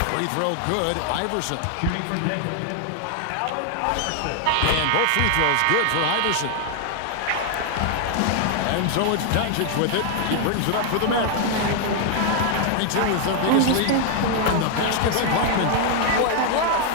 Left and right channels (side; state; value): both; different; correlation 0.00